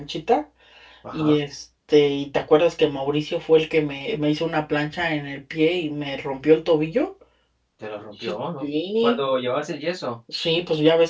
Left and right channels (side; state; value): both; identical; correlation 1.00